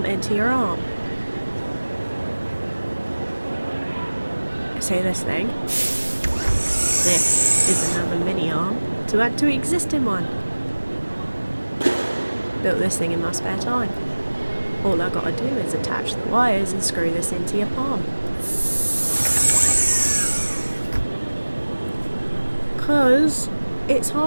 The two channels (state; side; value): inverted; both; correlation -1.00